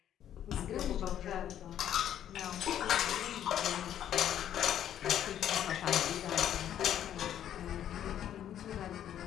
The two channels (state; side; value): quieter; right; 10.6 dB